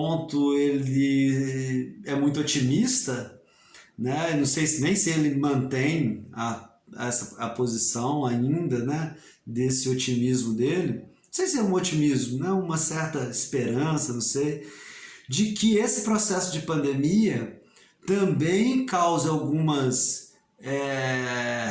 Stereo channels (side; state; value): both; identical; correlation 1.00